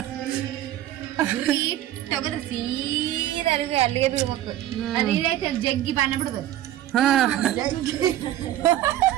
ತಗದ್ರ ಸೀದಾ ಅಲ್ಲಿಗೆ ಬಿಡ್ಬೇಕು. ಅದೇನೈತೆ ಜಗ್ಗಿ ಬಾಣ ಬಿಡ್ಬೇಕು.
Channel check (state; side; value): quieter; left; 13.1 dB